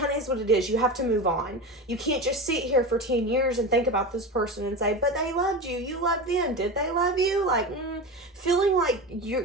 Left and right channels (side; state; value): both; normal; correlation 0.25